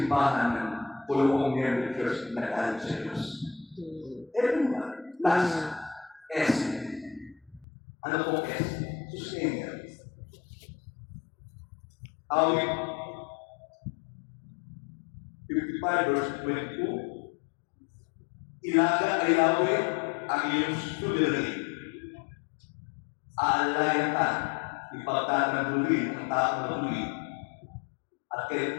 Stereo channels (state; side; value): drops out; right; at 7.7 s